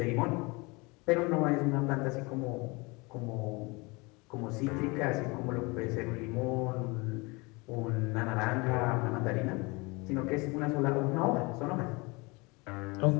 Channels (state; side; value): quieter; right; 26.5 dB